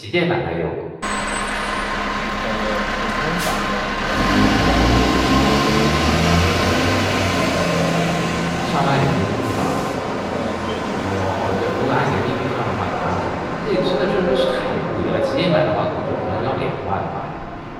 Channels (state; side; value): identical; both; correlation 1.00